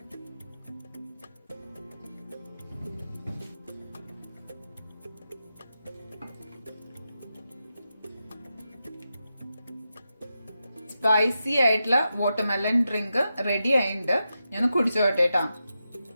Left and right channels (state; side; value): inverted; both; correlation -0.89